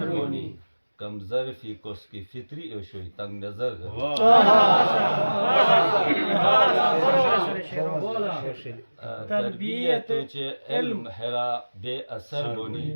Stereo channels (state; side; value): inverted; both; correlation -1.00